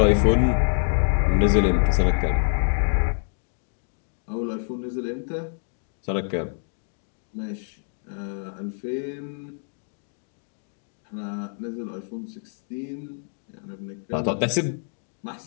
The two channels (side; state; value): right; silent; digital silence